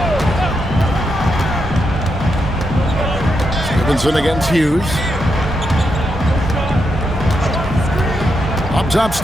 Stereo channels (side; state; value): both; normal; correlation 0.83